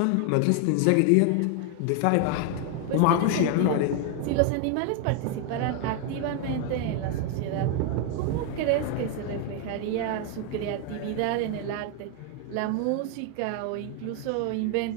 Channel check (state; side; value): different; both; correlation 0.01